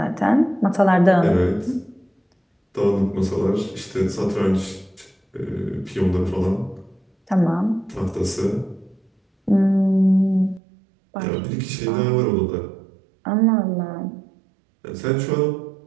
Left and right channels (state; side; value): drops out; left; at 10.6 s